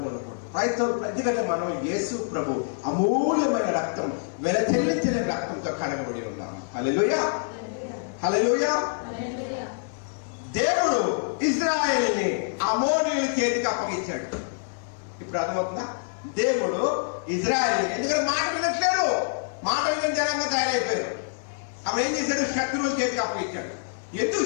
క్రైస్తవులు ఎందుకంటే మనం యేసు ప్రభు అమూల్యమైన రక్తం, వెలచెల్లించిన రక్తంతో కడగబడి ఉన్నాము. హల్లెలూయా, హల్లెలూయా. దేవుడు ఇశ్రాయేలుని అమోనీయుల చేతికి అప్పగించాడు. ఇప్పుడు అర్థమవుతుందా? దేవుడు ఇశ్రాయేలు ఎందుకంటే మాట వినట్లేదు, మాట విని జనంగా తయారైపోయారు. ఆమె ఏం చేశాడు? శత్రువుల చేతికి అప్పగించాడు. ఎందుకు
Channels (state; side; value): silent; right; 61 dB below the other